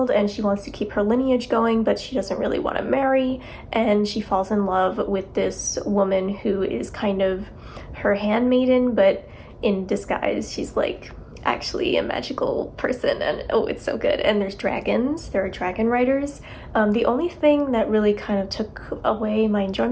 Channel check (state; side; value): identical; both; correlation 1.00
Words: and she wants to keep her lineage going, but she doesn't really want to marry, and she falls in love with this woman who is kind of her handmaiden, but in disguise she's like actually a magical person, and oh, it's so good. And there's dragons. There are dragon riders. The only thing that really kind of took away my